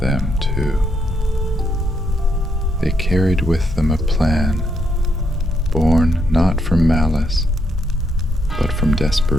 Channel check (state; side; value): normal; both; correlation 0.77